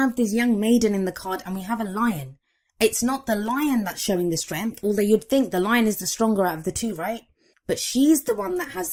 this young maiden in the card and we have a lion. It's not the lion that's showing the strength, although you'd think the lion is the stronger out of the two, right? But she's the one that has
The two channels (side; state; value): both; identical; correlation 1.00